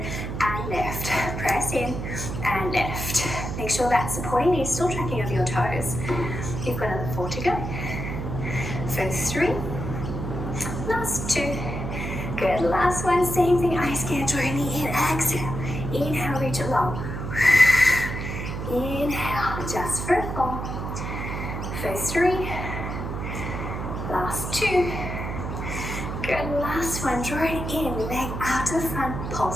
and lift, press in and lift. Make sure that supporting knee is still tracking over your toes. You've got another 4 to go. For 3, last 2, good. Last 1, same thing, ice skate, draw your knee in, exhale, inhale, reach it long. Inhale, just for 4. For 3, last 2, good. Last 1, draw it in, leg out to the front,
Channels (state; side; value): noise; right; hum, 5 dB below the sound